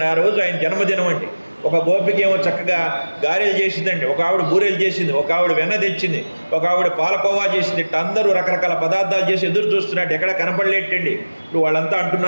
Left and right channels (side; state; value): both; inverted; correlation -1.00